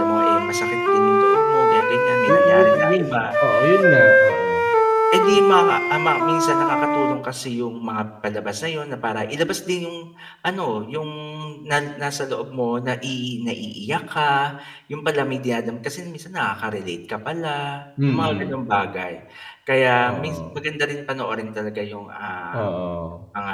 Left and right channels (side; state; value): both; identical; correlation 1.00